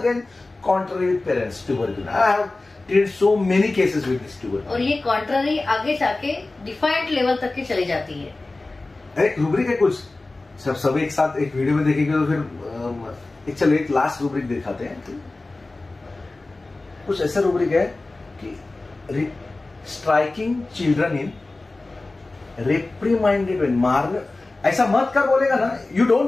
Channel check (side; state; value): right; quieter; 3.2 dB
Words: contrary with parents. Tuberculum. I have treated so many cases with this tuberculum. और ये contrary आगे जाके defined level तक की चली जाती है. एक रूब्रिक है कुछ, सब एक साथ एक वीडियो में देखेंगे तो फिर चलो एक लास्ट रूब्रिक दिखाते हैं. कुछ ऐसा रूब्रिक है कि स्ट्राइकिंग चिल्ड्रन इन रिप्रीमाइंडेड व्हेन, मारने ऐसा मत कर बोलेगा ना, you